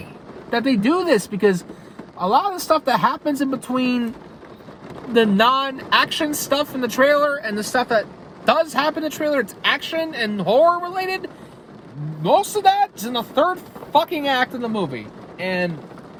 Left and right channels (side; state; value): both; identical; correlation 1.00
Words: that they do this, because a lot of the stuff that happens in between the non-action stuff in the trailer and the stuff that does happen in the trailer, it's action and horror related, most of that is in the third fucking act of the movie. And